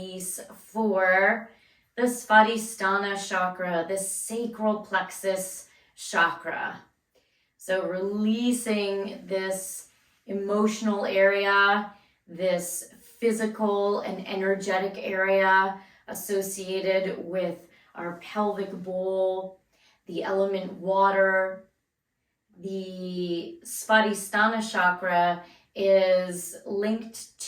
for the Svadhistana Chakra, the sacral plexus chakra. So releasing this emotional area, this physical and energetic area associated with our pelvic bowl, the element water. The Svadhisthana Chakra is linked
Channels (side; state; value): both; identical; correlation 1.00